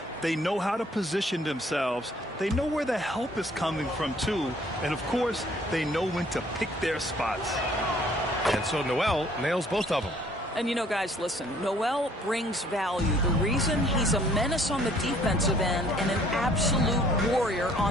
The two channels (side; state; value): both; normal; correlation 0.59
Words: they know how to position themselves. They know where the help is coming from, too. And, of course, they know when to pick their spots. And so Noel nails both of them. And, you know, guys, listen, Noel brings value. The reason he's a menace on the defensive end and an absolute warrior